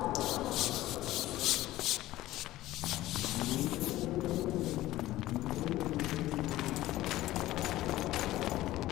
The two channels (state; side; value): quieter; right; 15.9 dB